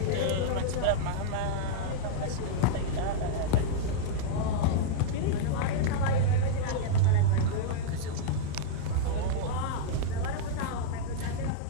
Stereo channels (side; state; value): both; different; correlation -0.02